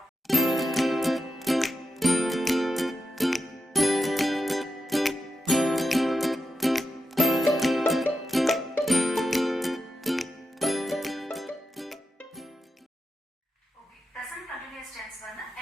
present continuous tense வந்து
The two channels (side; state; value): both; normal; correlation 0.88